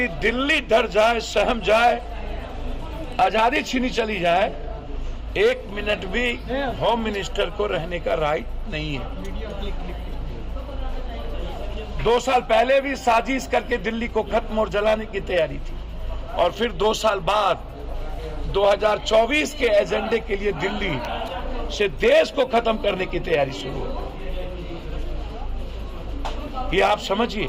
दिल्ली डर जाए, सहम जाए, आजादी छीनी चली जाए, 1 मिनट भी होम मिनिस्टर को रहने का राइट नहीं है। 2 साल पहले भी साजिश करके दिल्ली को खत्म और जलाने की तैयारी थी, और फिर 2 साल बाद 2024 के एजेंडे के लिए दिल्ली से देश को खत्म करने की तैयारी शुरू हो। ये आप समझिए।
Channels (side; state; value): both; identical; correlation 1.00